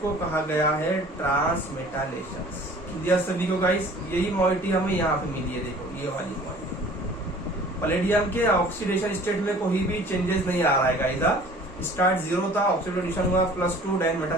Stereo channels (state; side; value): normal; both; correlation 0.49